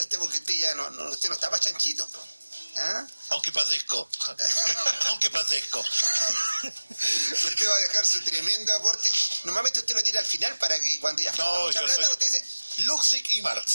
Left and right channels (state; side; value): inverted; both; correlation -1.00